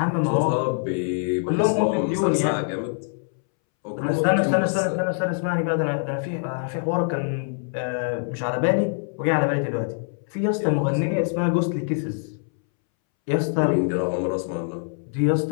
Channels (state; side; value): silent; right; 62 dB below the other